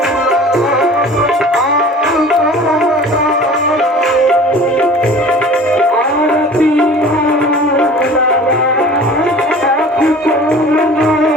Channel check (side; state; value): both; normal; correlation 0.44